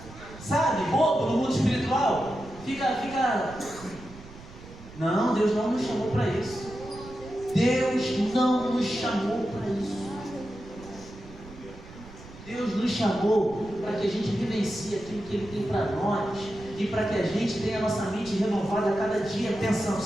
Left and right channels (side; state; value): right; noise; rumble, 17 dB below the sound